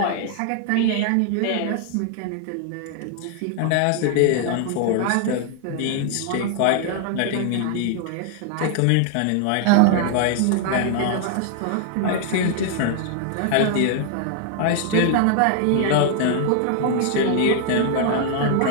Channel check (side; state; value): both; different; correlation 0.00